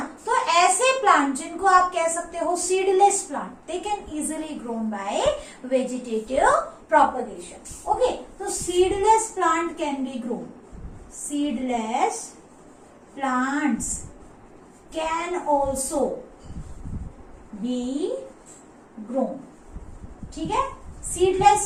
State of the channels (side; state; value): both; identical; correlation 1.00